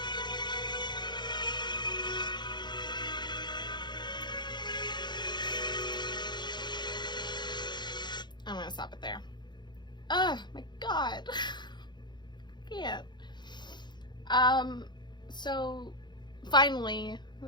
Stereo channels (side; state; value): right; late; 0.21 ms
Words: My God. Can't. So finally,